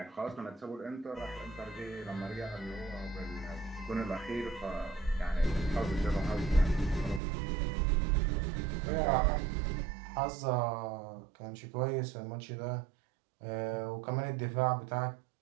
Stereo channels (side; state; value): left; drops out; at 7.2 s